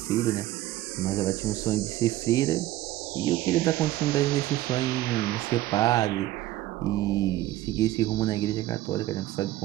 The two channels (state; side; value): quieter; left; 15.3 dB